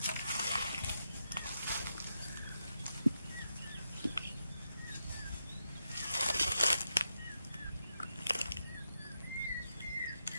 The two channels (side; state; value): both; inverted; correlation -0.84